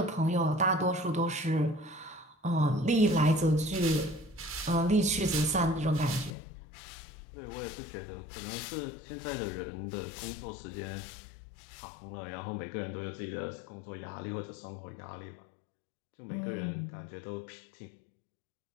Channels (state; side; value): drops out; right; at 6.4 s